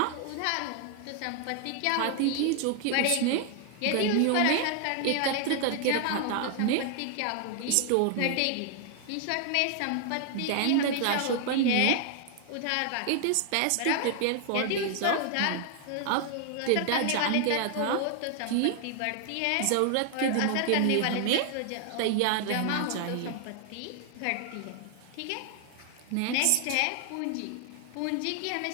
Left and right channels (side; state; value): both; different; correlation 0.00